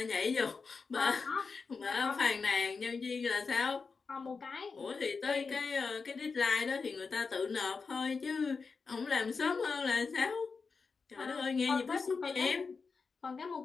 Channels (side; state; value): right; quieter; 4.8 dB